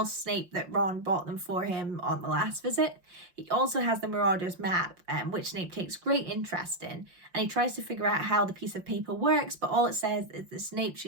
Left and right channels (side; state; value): left; late; 5.7 ms